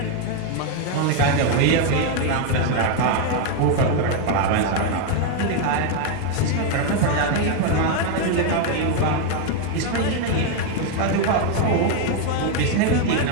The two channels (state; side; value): different; both; correlation 0.01